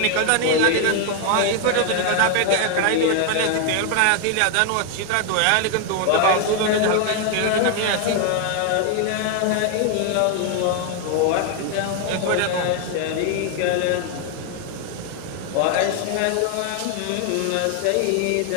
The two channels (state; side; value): different; both; correlation 0.00